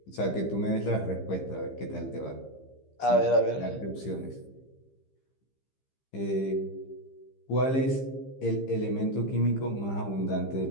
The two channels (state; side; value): late; right; 15 ms